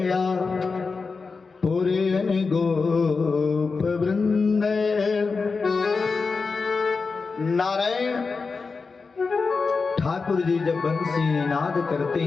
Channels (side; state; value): right; quieter; 4.6 dB